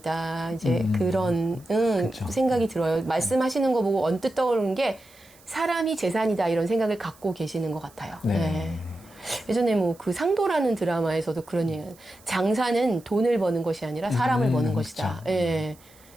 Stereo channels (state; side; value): noise; right; hiss, 27 dB below the sound